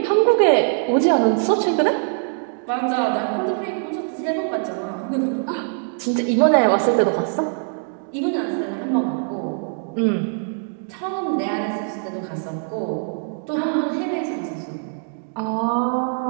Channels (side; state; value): left; silent; 64 dB below the other